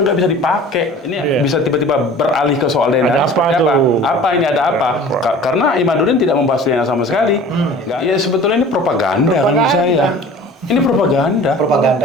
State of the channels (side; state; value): both; normal; correlation 0.43